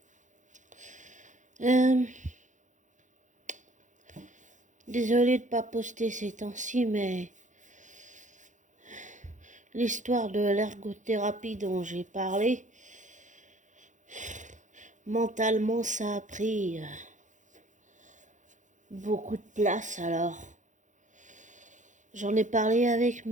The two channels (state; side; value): late; left; 0.36 ms